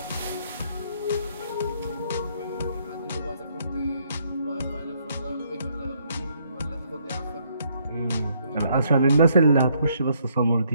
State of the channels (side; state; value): both; inverted; correlation -0.70